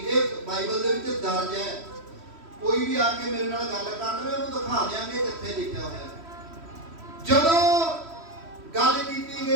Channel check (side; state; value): left; late; 3.1 ms